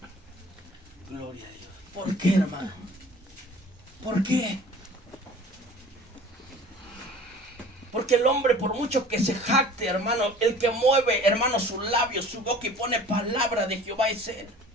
Gloria a Dios. ¿Por qué, hermano? ¿Por qué? Porque el hombre, por mucho que se jacte, hermano, el que mueve, hermano, sus labios, su boca y pone palabra de Jehová es Él.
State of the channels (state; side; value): normal; both; correlation 0.45